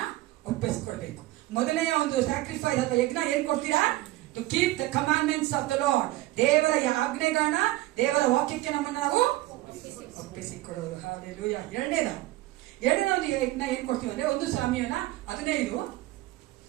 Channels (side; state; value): left; quieter; 17.5 dB